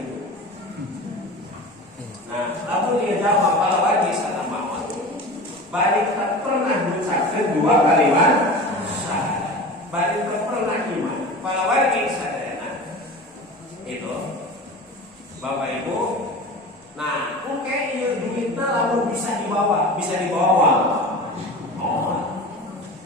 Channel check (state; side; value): normal; both; correlation 0.34